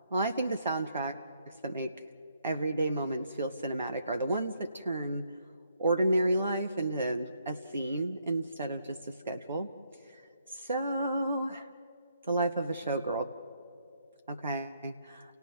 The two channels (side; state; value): both; inverted; correlation -0.72